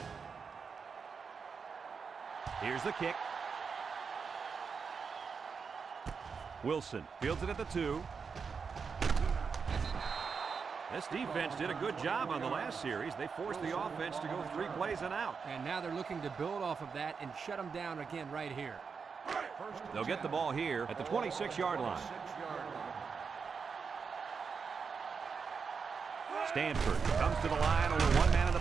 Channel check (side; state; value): left; quieter; 5.6 dB